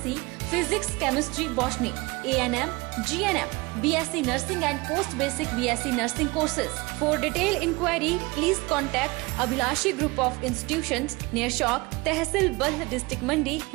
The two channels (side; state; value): left; quieter; 24.2 dB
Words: Physics, Chemistry, Botany, A&M, GNM, BSc Nursing and Post Basic BSc Nursing courses. For detailed inquiry, please contact Abhilashi Group of Institutions near Chowk, Tehsil Bald District Mandi,